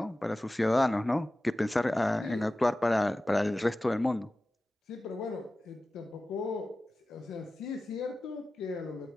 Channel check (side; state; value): both; normal; correlation 0.95